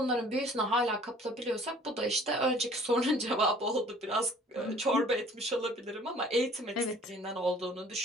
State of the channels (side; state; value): both; normal; correlation 0.52